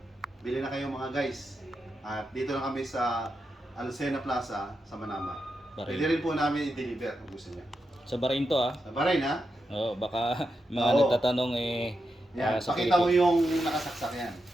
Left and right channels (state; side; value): normal; both; correlation 0.86